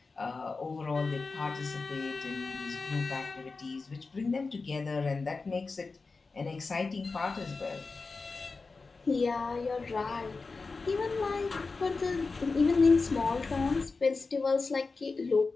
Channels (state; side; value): quieter; right; 4.1 dB